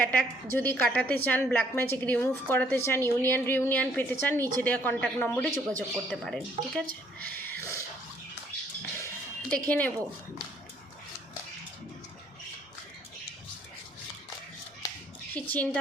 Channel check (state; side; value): normal; both; correlation 0.64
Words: যদি কাটাতে চান, ব্ল্যাক ম্যাজিক রিমুভ করাতে চান, রিউনিয়ন পেতে চান, নিচে দেওয়া কন্ট্যাক্ট নম্বরে যোগাযোগ করতে পারেন। ঠিক আছে, দেখে নেব কি চিন্তা